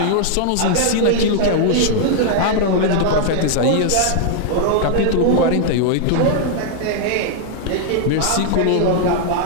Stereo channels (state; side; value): different; both; correlation 0.00